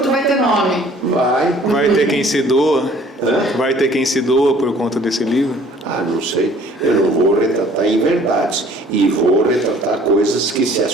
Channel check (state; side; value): normal; both; correlation 0.54